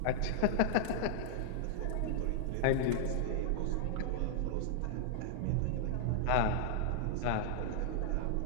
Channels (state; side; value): different; both; correlation -0.01